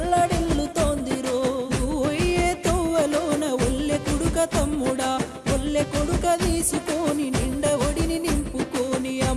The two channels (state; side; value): identical; both; correlation 1.00